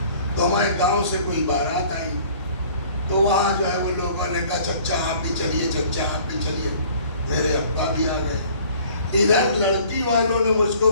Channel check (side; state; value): both; inverted; correlation -0.52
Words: تو ہمارے گاؤں سے کوئی بارات آئی تو وہاں جو ہے وہ لوگوں نے کہا چچا آپ بھی چلیے، چچا آپ بھی چلیے، میرے ابا بھی آ گئے۔ ادھر لڑکی والوں نے مجھ